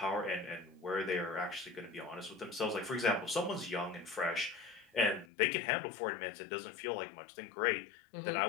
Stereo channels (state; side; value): drops out; right; at 5.2 s